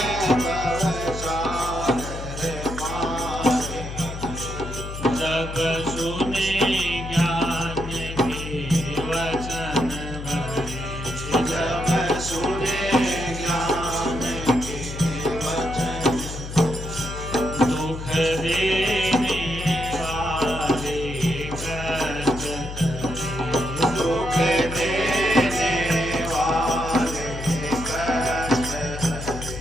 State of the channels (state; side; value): noise; left; hum, 8 dB below the sound